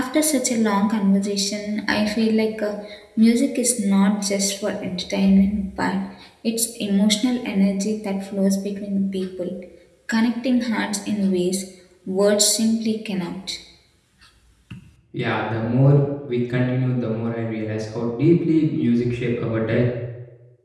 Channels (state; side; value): identical; both; correlation 1.00